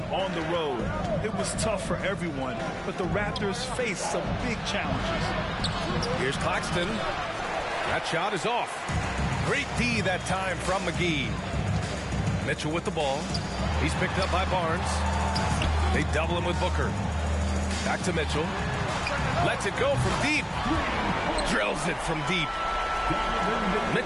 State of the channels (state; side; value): identical; both; correlation 1.00